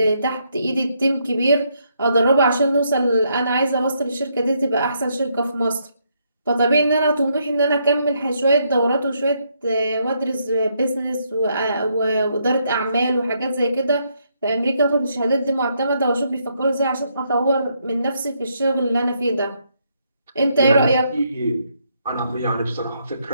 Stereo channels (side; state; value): both; inverted; correlation -0.75